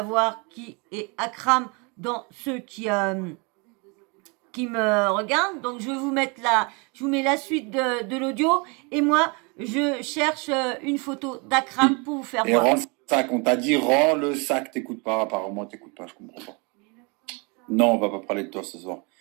qui est Akram dans ceux qui me regardent. Donc je vais vous mettre je vous mets la suite de l'audio et moi je cherche une photo d'Akram pour vous faire voir. Et rends le sac, on t'a dit rends le sac, t'écoutes pas, apparemment t'écoutes pas, je comprends pas. Non, on va pas parler de toi ce soir.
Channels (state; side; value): quieter; left; 31.1 dB